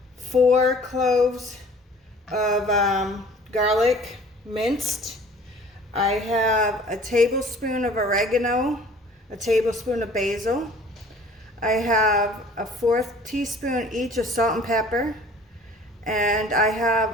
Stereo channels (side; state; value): both; normal; correlation 0.50